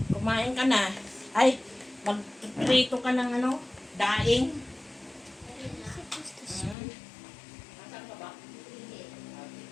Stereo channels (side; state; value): right; drops out; at 6.8 s